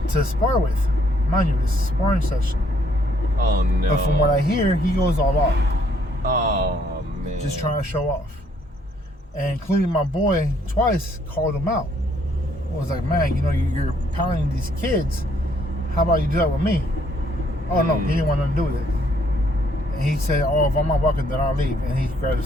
to spar with. Mind you, this is a sparring session. Oh no. But from what I hear, he goes all out. Oh man. Just trying to show off. And including my boy twice called him out. I was like, "Man, you know, you're pounding these kids. How about you do that with me?" Oh no, he didn't want nothing to do with it. And he said, "Oh, if I'm not welcome, then I'll leave." And he grabbed his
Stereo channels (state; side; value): normal; both; correlation 0.67